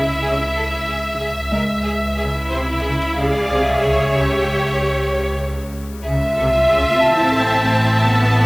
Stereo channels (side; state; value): left; noise; hiss, 22 dB below the sound